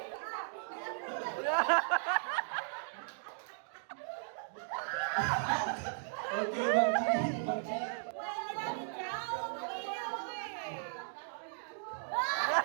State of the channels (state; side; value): silent; left; digital silence